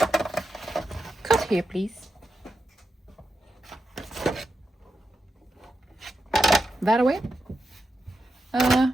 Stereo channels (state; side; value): normal; both; correlation 0.87